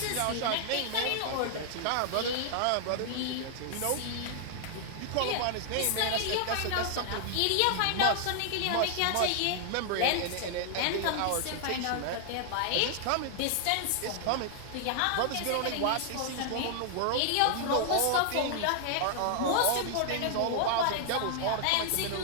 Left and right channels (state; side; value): different; both; correlation 0.00